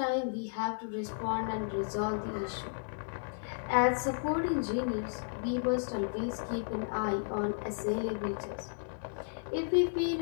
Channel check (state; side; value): silent; right; digital silence